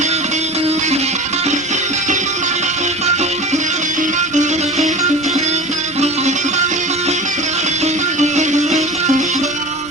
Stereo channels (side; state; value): both; normal; correlation 0.33